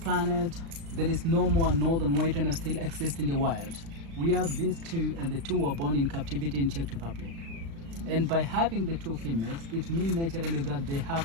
there is no more northern white rhino still exist in the wild. We have these two, and the two were born in captivity in Czech Republic. And by having the two females, it means naturally that they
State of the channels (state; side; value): late; left; 36 ms